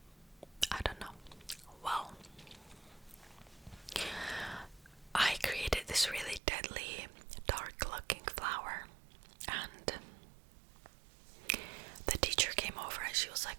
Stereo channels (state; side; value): drops out; left; at 6.4 s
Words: I don't know. Well, I created this really deadly, dark looking flower, and the teacher came over and she was